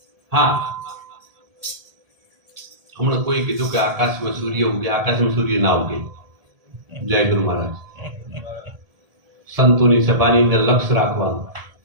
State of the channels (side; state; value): left; late; 1.7 ms